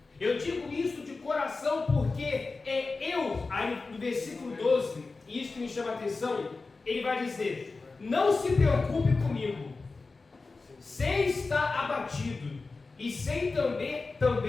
Eu digo isso de coração porque aí no versículo 12, e isso que me chama a atenção, ele vai dizer: não se preocupe comigo, sem estar abatido, e sem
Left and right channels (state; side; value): quieter; right; 3.9 dB